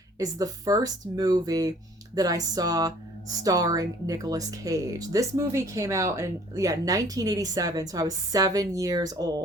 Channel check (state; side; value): normal; both; correlation 0.54